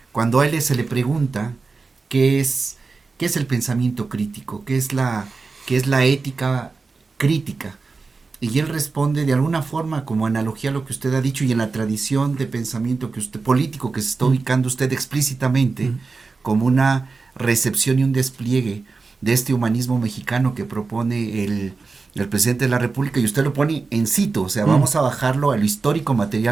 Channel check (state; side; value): quieter; left; 4.2 dB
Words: cuando a él se le pregunta qué es el pensamiento crítico, qué es la ética crítica. Y él responde de alguna forma como analogía a lo que usted ha dicho y en la tradición de pensamiento que usted, político que se está ubicando usted explícitamente, como una recepción y un despliegue de este humanismo mexicano que propone el presidente de la República, y usted lo pone en situ, o sea, vamos a bajarlo a lo histórico